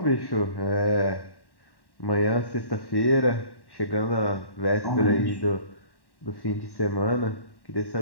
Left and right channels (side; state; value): right; late; 1.1 ms